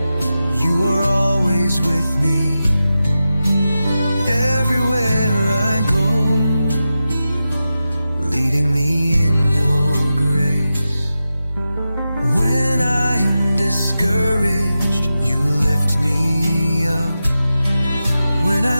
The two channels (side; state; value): both; inverted; correlation -0.92